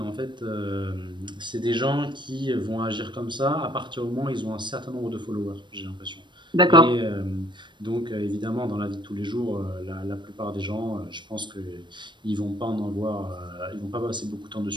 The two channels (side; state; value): left; late; 0.22 ms